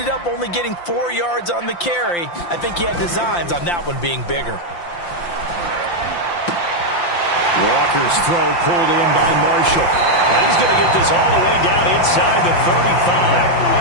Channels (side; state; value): right; late; 5.8 ms